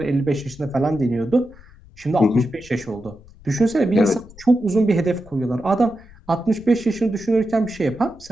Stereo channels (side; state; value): left; noise; rumble, 22 dB below the sound